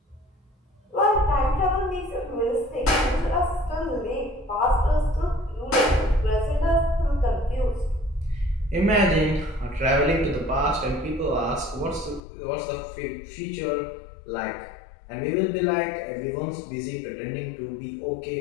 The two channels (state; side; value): drops out; right; at 12.2 s